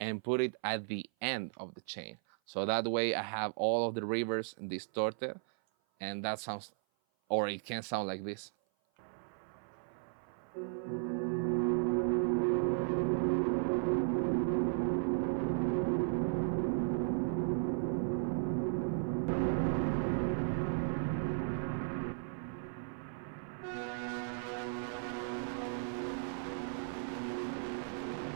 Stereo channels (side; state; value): left; silent; 54 dB below the other